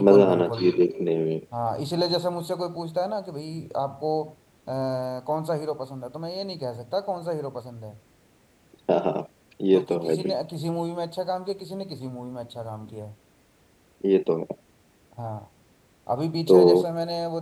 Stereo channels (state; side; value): identical; both; correlation 1.00